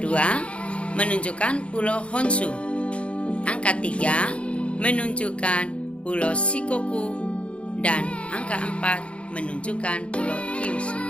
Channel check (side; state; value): right; late; 0.060 ms